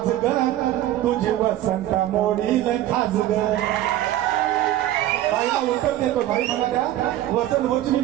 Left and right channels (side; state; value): left; quieter; 13.6 dB